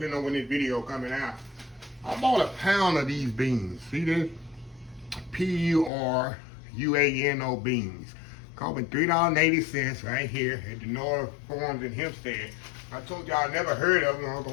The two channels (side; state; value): right; drops out; at 5.9 s